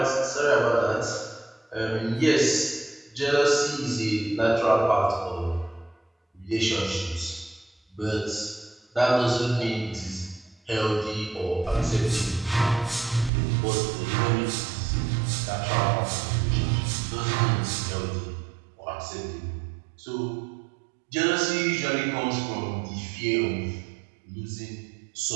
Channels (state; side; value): drops out; left; at 13.3 s